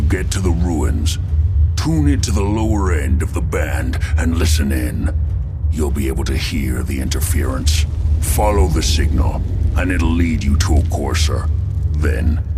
get to the ruins, tune into the lower end of the band and listen in. You'll be able to hear the interference. Follow the signal, and it'll lead you to a courser. Then,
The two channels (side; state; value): both; identical; correlation 1.00